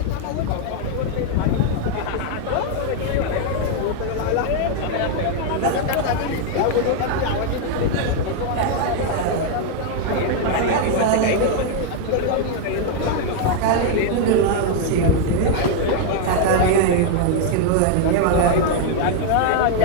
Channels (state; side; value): different; both; correlation 0.00